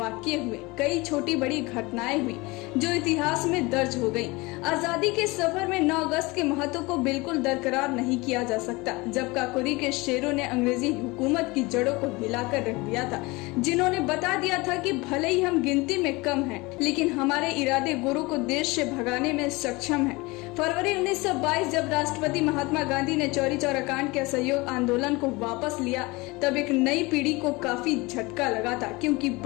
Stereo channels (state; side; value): quieter; right; 23.8 dB